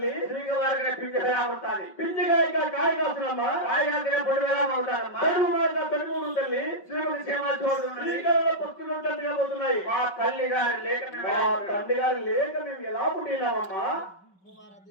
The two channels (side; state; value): right; late; 5.3 ms